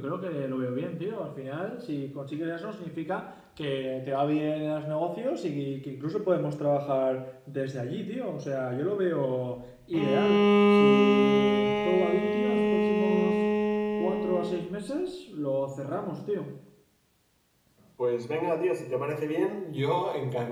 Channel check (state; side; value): identical; both; correlation 1.00